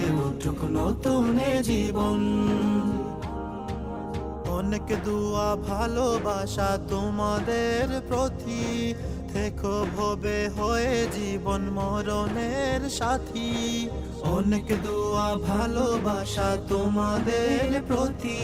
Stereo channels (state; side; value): identical; both; correlation 1.00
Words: উঠুক নতুন জীবন। অনেক দুয়া ভালোবাসা তোমাদের প্রতি, থেকো ভবে হয়ে জীবন মরণের সাথী। অনেক দুয়া ভালোবাসা তোমাদের প্রতি,